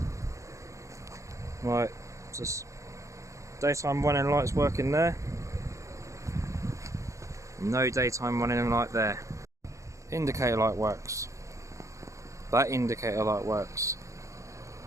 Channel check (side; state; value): left; late; 0.15 ms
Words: Right, just daytime running lights working there. No daytime running light there. Indicator light works. That indicator light works.